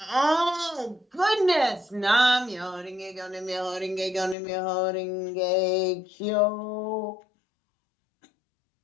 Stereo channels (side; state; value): right; drops out; at 4.4 s